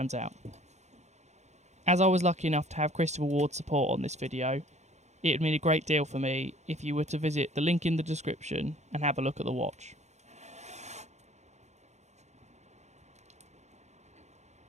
out. As I was lucky enough to have Christopher Ward's support on this video, it would mean a great deal for me if you were to visit the link in the description and have a look at the watch.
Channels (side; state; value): left; late; 0.33 ms